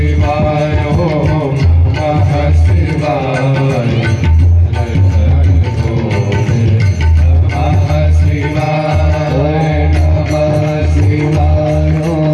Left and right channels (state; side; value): identical; both; correlation 1.00